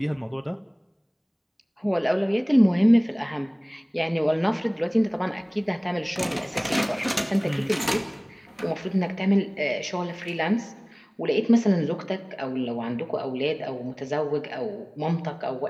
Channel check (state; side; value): identical; both; correlation 1.00